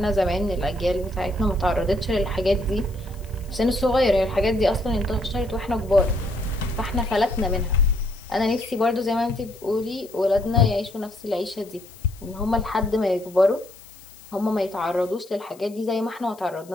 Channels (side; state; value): left; noise; hiss, 24 dB below the sound